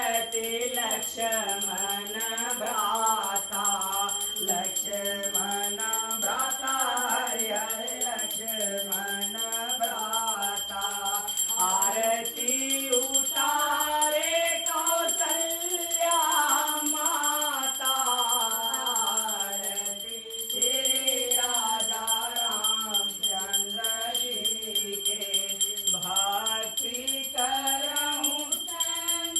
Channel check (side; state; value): both; identical; correlation 1.00